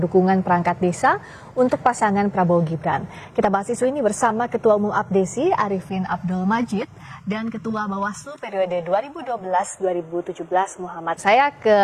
perangkat desa untuk pasangan Prabowo Gibran. Kita bahas isu ini bersama Ketua Umum Abdesi Arifin Abdul Majid dan Ketua Bawaslu periode 2012-2017 Muhammad. Saya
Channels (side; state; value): both; identical; correlation 1.00